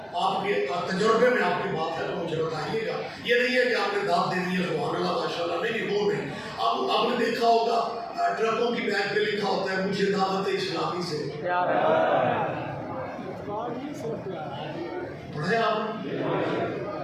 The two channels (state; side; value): identical; both; correlation 1.00